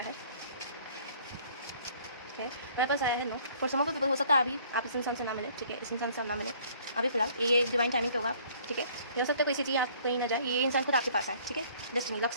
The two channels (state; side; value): inverted; both; correlation -0.57